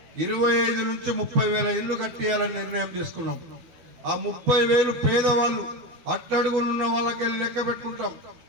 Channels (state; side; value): late; left; 12 ms